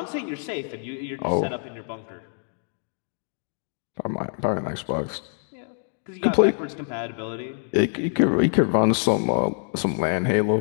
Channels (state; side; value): silent; right; 61 dB below the other